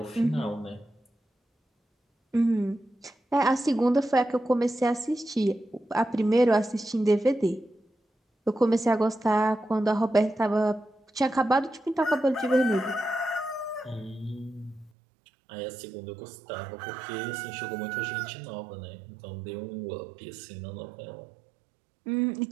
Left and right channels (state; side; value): drops out; left; at 14.9 s